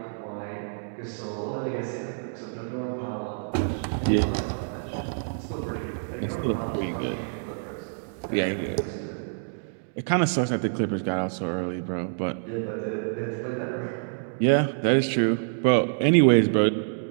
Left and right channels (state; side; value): silent; left; digital silence